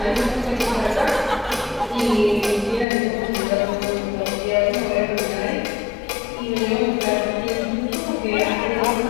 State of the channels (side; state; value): right; drops out; at 2.9 s